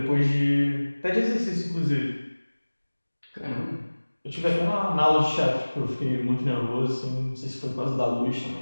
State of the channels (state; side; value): inverted; both; correlation -1.00